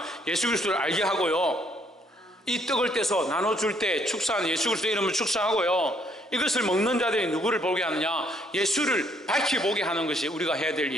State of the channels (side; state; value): both; normal; correlation 0.68